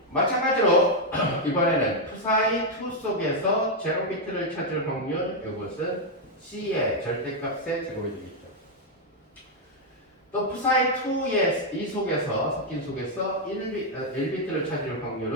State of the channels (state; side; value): normal; both; correlation 0.00